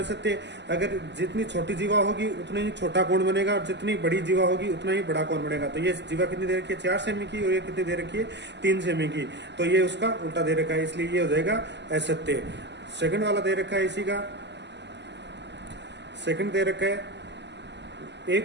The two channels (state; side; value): late; left; 0.51 ms